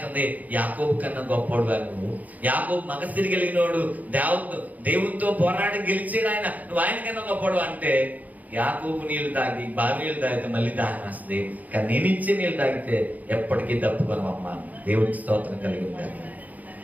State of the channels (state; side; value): late; left; 0.077 ms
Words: యాకోబు కన్నా గొప్పోడు నువ్వు, యాకోబు మగసిరి కలిగినోడు, దేవునితో పోరాడి గెలిచాడు ఆయన, నువ్వు ఆయన కన్నా గొప్పోడు అంటే. యాకోబు నీళ్లు తాగి బావి నీళ్ళు తాగితే మళ్ళీ దాహం వస్తుంది, కానీ నేను ఇచ్చే నీళ్ళు తాగితే ఎప్పటికీ తప్పుకోనమ్మా. దేవుడికి స్తోత్రం కలిగి ఉండాలి.